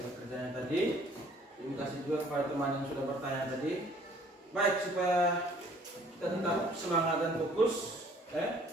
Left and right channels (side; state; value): both; normal; correlation 0.57